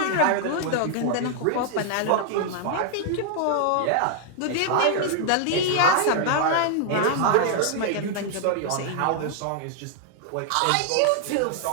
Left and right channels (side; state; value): both; different; correlation -0.01